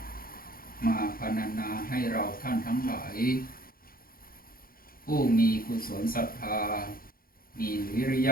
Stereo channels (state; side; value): late; right; 0.42 ms